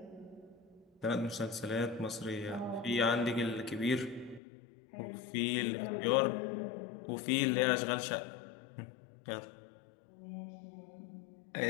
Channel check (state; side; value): drops out; right; at 4.4 s